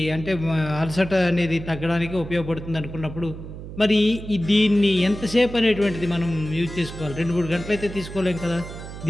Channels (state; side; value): noise; right; hum, 11 dB below the sound